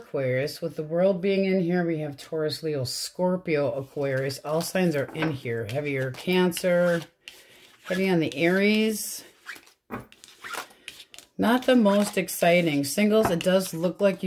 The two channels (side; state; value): both; identical; correlation 1.00